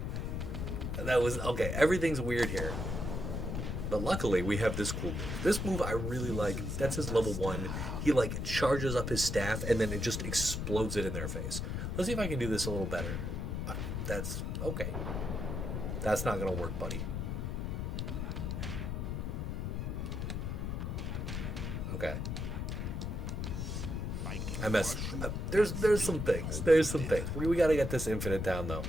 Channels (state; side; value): noise; left; rumble, 2 dB below the sound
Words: That was... Okay, everything's weird here. But luckily, we have this cool move. This move I really like. That's his level 1. He, like, charges up his staff, and then it just explodes it in their face. Let's see if I can do this a little better. That's... Okay. That's not going to work, buddy. Okay. I messed... There's some things. There's some things. We got to get this infinite down, though.